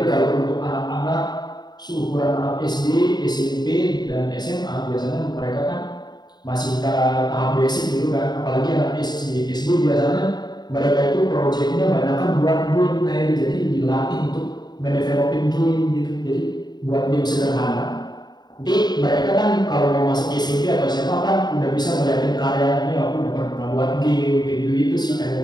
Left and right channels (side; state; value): right; late; 0.20 ms